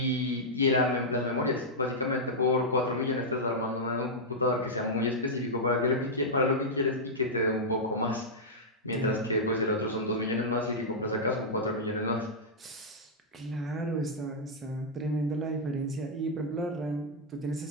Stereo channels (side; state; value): both; normal; correlation -0.08